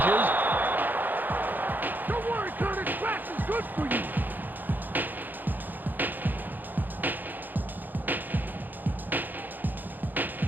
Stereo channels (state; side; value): late; left; 0.087 ms